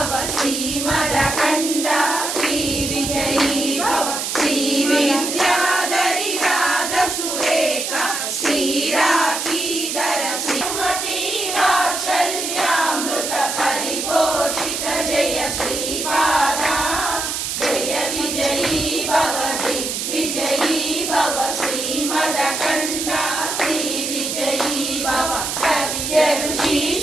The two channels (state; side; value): noise; right; hiss, 3 dB below the sound